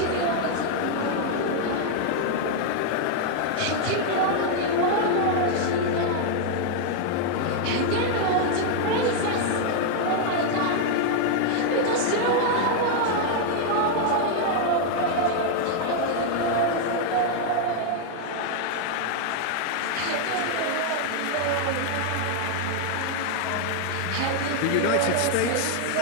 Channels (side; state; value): both; different; correlation 0.00